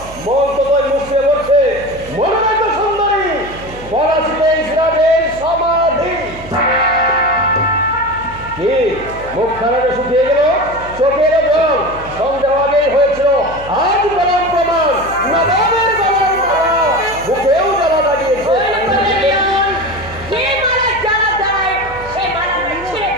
মন তো তোর মুখে বলছে। মনে নাই তো সুন্দরী, পলাশিতে ইসরায়েল সমাধি। কি মুখ খানাটা শুকিয়ে গেল, চোখের জল সন্দেহ আগেই হয়েছিল। আজ বলার প্রমাণ, নবাবের বলার মালা মুখেও জ্বালা লাগিয়েছে। যে মালা জ্বালা দেয় সে মালা আমরা ছিঁড়ে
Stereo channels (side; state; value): right; noise; hum, 16 dB below the sound